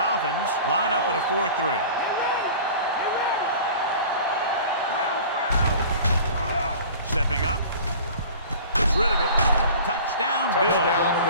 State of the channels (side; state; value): both; inverted; correlation -0.42